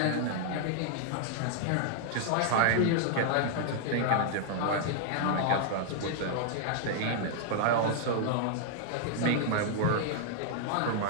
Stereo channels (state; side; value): different; both; correlation -0.01